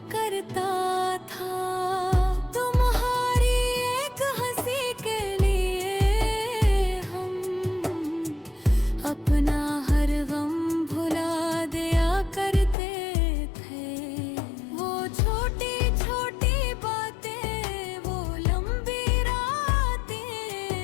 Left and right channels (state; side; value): drops out; right; at 12.8 s